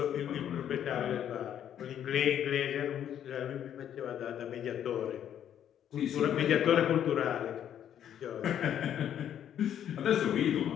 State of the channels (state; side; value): quieter; right; 9.9 dB